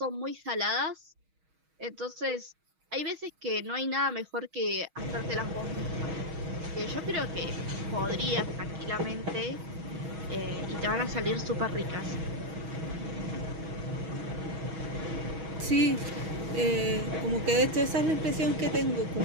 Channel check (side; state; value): left; late; 6.3 ms